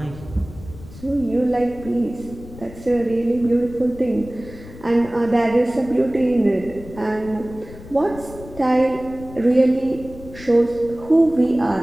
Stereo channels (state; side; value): noise; left; rumble, 16 dB below the sound